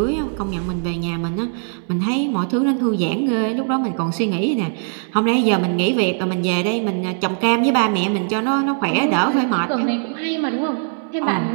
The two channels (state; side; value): silent; left; 66 dB below the other